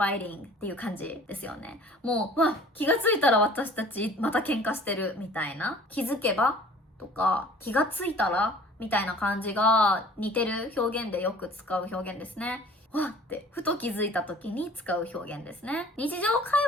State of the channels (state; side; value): normal; both; correlation 0.49